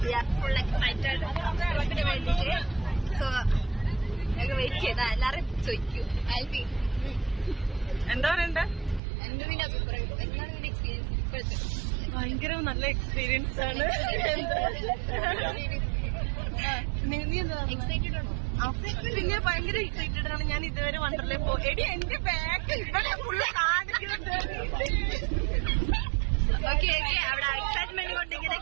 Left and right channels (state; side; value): drops out; left; at 9.0 s